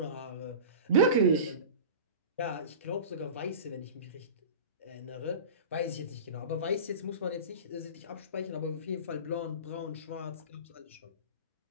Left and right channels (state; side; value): inverted; both; correlation -0.33